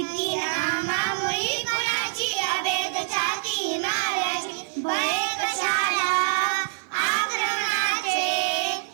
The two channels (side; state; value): left; silent; 62 dB below the other